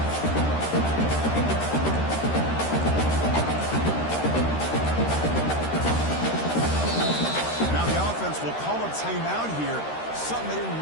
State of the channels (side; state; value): right; late; 13 ms